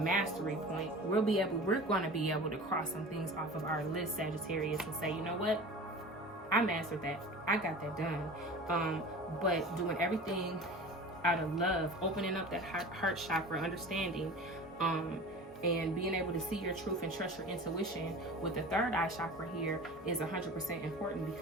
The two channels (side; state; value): both; normal; correlation 0.37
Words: point. We're going to be able to cross some things off of our list, Sagittarius, and say, you know what? I mastered that. I got that done. But doing everything out of love, opening up that heart chakra, understanding, and being able to see your truth and trust your intuition with the third eye chakra here is 100% important,